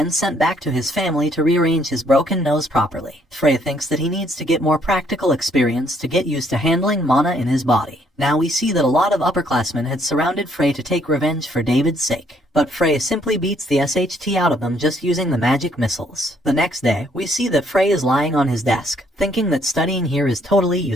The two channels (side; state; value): both; normal; correlation 0.67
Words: sent back to his family to rearrange his broken nose properly. Frey thinks that he needs to get more practical experience to get used to handling mana in his body. Now we see that a lot of upperclassmen had surrounded Frey to take revenge for David's sake. But Frey simply beats the SHT out of them just using the magic missiles. The next day, we see that Frey is lying on his desk, thinking that studying here is totally